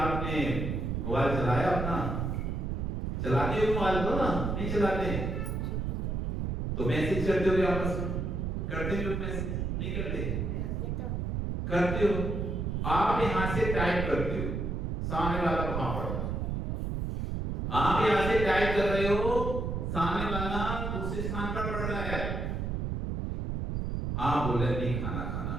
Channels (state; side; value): noise; right; rumble, 1 dB below the sound